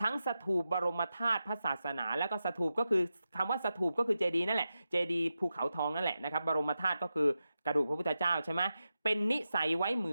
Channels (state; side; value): inverted; both; correlation -0.91